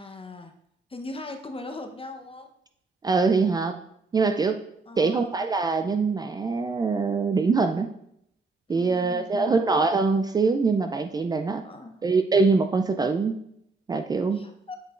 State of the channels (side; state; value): left; quieter; 3.8 dB